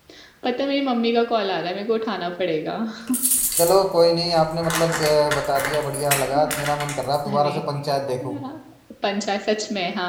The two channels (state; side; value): identical; both; correlation 1.00